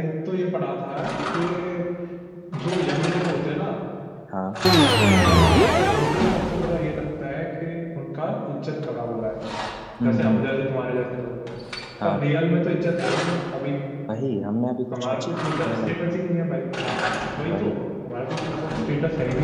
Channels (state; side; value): identical; both; correlation 1.00